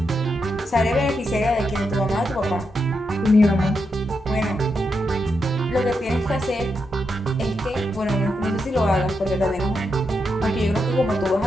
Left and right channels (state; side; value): normal; both; correlation 0.84